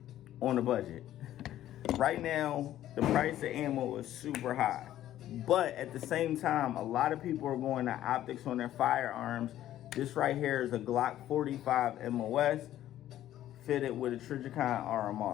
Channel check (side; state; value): right; quieter; 12.8 dB